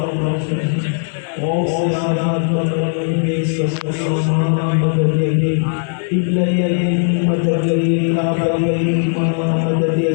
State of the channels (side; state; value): right; silent; 62 dB below the other